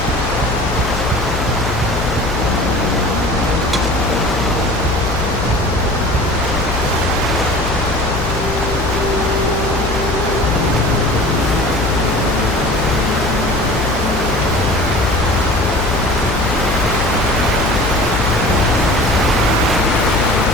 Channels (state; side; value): noise; left; hum, 5 dB below the sound